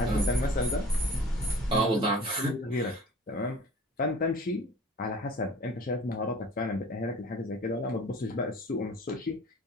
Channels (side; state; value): both; normal; correlation 0.45